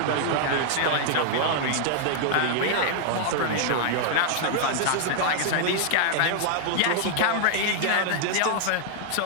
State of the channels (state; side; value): different; both; correlation -0.01